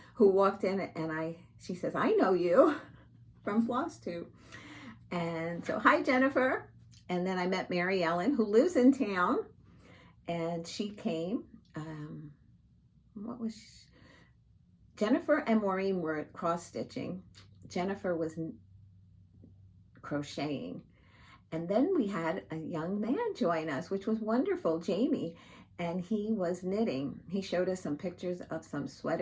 who walked in, and she says, I know you from Flosstube. And so, hi, Jennifer. And then I met Mary Ellen, who lives in town, and she came. Jennifer and Maureen were cross-stitching. Jennifer was crocheting. And then we had a young man join us, which was wonderful, Jamie, and he was knitting. He showed us some pictures of some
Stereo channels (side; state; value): both; identical; correlation 1.00